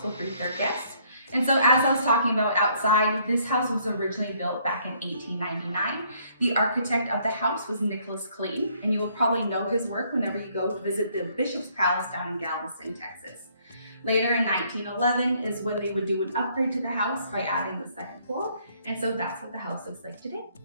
will greet their guests. And so as I was talking about outside, this house was originally built back in 1899. The architect of the house was Nicholas Clayton, and you will probably know his work whenever you go to visit the Bishop's Palace down in Galveston, Texas. Later in 1911 is when they would do an upgrade to the house by adding the second floor, and so that's what the house looks like today.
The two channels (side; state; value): both; inverted; correlation -0.66